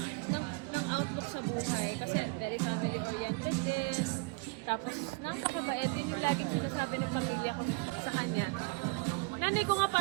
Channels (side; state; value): left; quieter; 28.7 dB